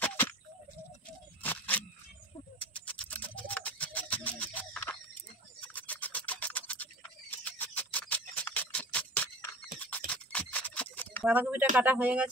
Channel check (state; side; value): normal; both; correlation 0.38